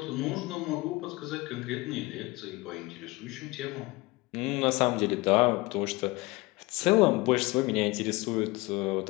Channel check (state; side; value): quieter; right; 22.8 dB